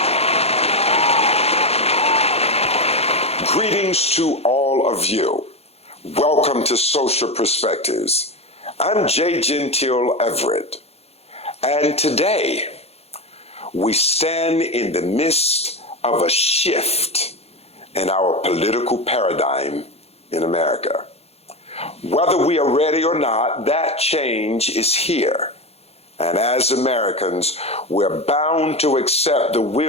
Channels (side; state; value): right; late; 0.30 ms